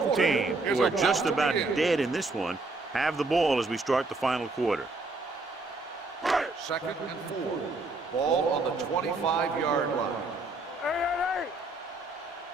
team, who are just about dead in this one, have the ball as we start the final quarter. Second and 4. Ball on the 25-yard line. Hey.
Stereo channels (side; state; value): left; quieter; 3.2 dB